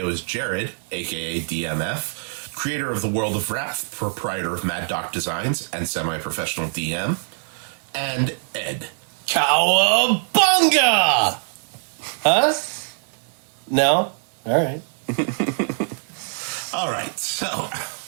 is Jared, aka DM.F, creator of the World of Wrath, proprietor of Mad Doc Designs, and semi-professional DM, and Ed. Cowabunga! Huh? No? All right. All right, so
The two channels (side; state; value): left; silent; digital silence